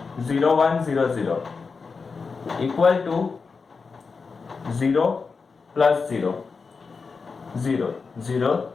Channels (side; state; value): right; quieter; 4.8 dB